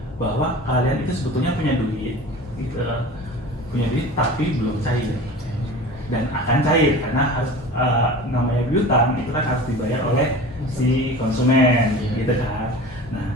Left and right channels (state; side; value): normal; both; correlation 0.37